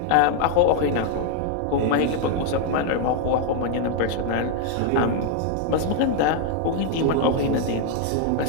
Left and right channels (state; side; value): different; both; correlation 0.00